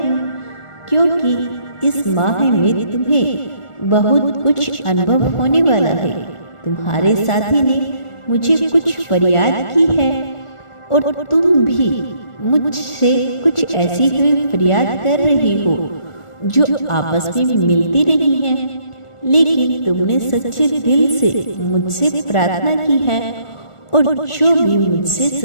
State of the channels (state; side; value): late; right; 1.4 ms